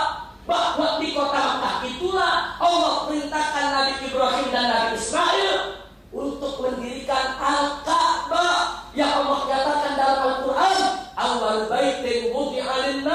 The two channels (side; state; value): both; identical; correlation 1.00